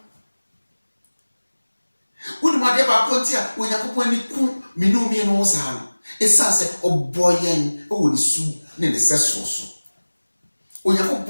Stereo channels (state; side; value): inverted; both; correlation -1.00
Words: Woni ma de ba konti a Onyankopɔn ni ku minumi no saa no. Esa se oboyen o ni su ne ne seso so.